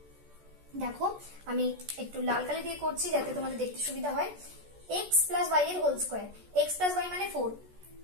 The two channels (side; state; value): left; late; 14 ms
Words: দেখো আমি একটু লাল কালি দিয়ে করছি যাতে তোমাদের দেখতে সুবিধা হয়। x + y এর হোল স্কয়ার, x + y মানে